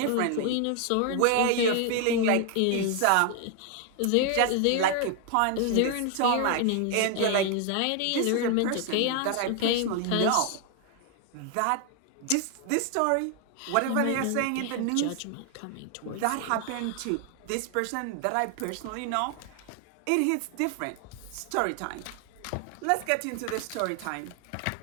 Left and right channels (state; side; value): different; both; correlation 0.00